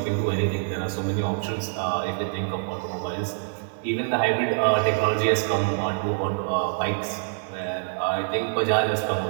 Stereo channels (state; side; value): silent; left; digital silence